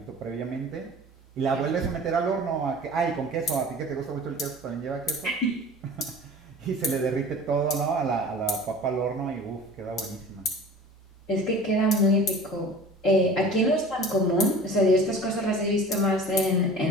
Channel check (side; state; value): both; normal; correlation 0.41